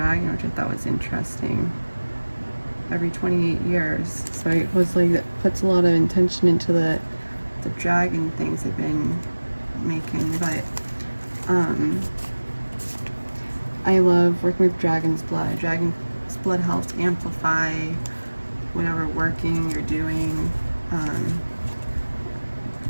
which I thought was interesting. Every 28 years, so it was like that puts a lot of intention into the dragon things I've been making. But I love working with dragon's blood. Dragon's blood helps amplify whatever working you're doing.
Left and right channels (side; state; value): both; inverted; correlation -1.00